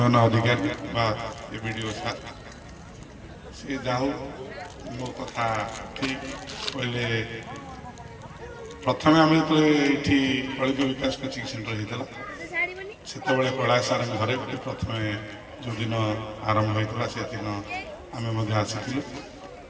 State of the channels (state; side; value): identical; both; correlation 1.00